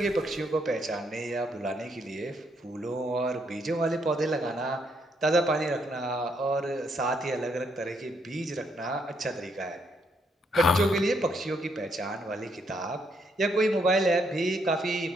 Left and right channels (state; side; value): normal; both; correlation 0.74